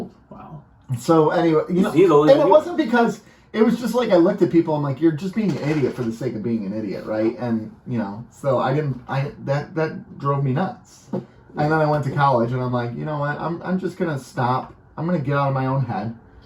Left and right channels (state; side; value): identical; both; correlation 1.00